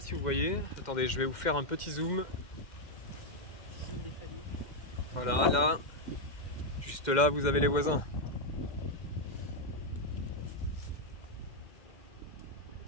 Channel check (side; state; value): right; late; 2.1 ms